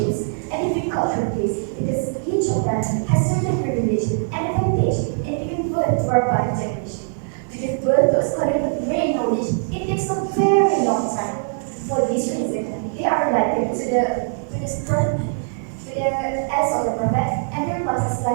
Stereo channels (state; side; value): silent; left; 58 dB below the other